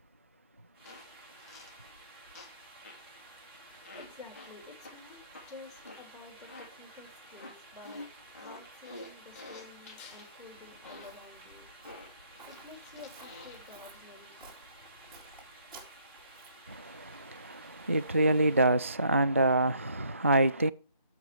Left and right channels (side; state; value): both; inverted; correlation -0.68